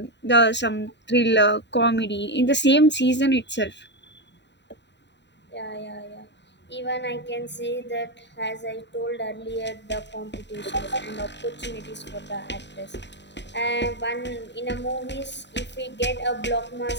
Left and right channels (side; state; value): right; late; 0.52 ms